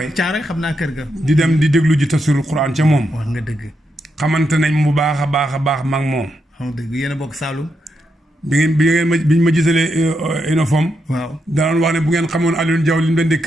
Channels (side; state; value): both; normal; correlation 0.83